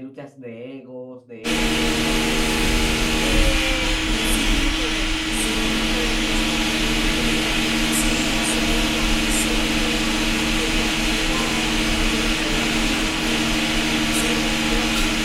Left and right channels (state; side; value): identical; both; correlation 1.00